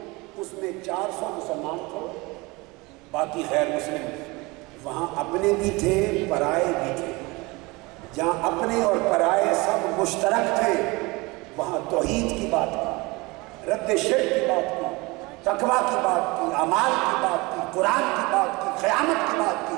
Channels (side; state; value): left; quieter; 24.2 dB